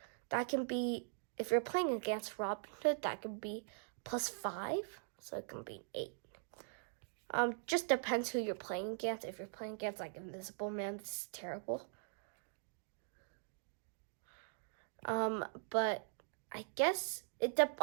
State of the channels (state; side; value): silent; left; digital silence